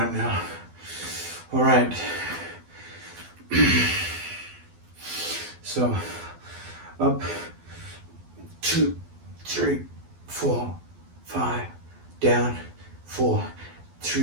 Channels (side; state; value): left; late; 12 ms